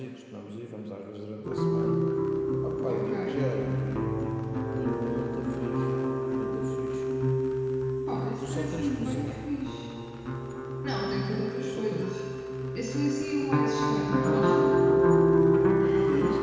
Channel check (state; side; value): identical; both; correlation 1.00